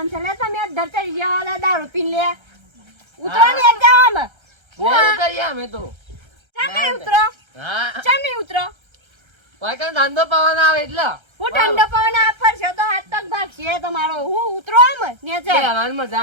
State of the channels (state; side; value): late; left; 1.3 ms